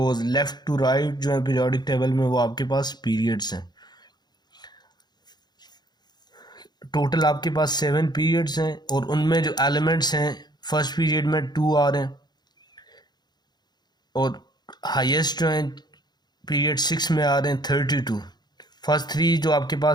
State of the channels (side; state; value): right; late; 0.20 ms